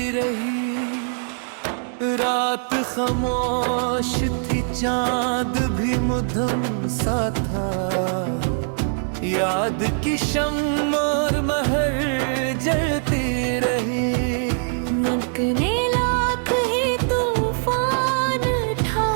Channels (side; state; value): left; silent; 64 dB below the other